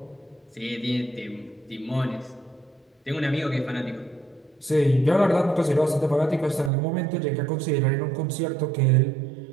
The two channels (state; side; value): drops out; left; at 6.7 s